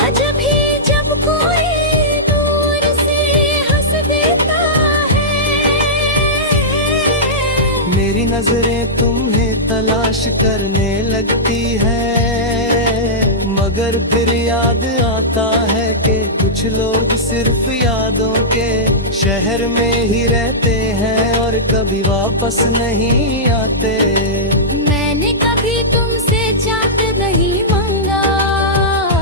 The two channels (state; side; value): normal; both; correlation -0.13